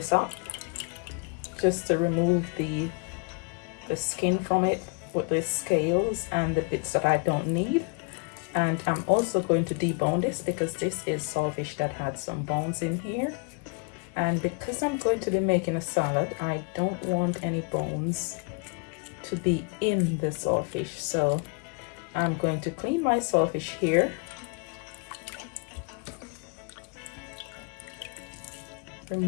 up, just to remove the skin from it with the scales and the bits that I don't need. And I'm also going to debone this because this is saltfish that had some bones in here. And because I'm going to be making a salad, I don't want any bones to be in the saltfish. So I'm going to clean my saltfish here.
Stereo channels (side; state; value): right; quieter; 34.1 dB